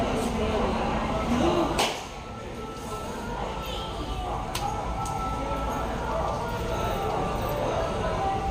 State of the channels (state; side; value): identical; both; correlation 1.00